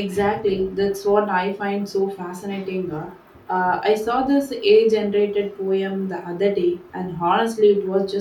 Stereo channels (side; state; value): both; identical; correlation 1.00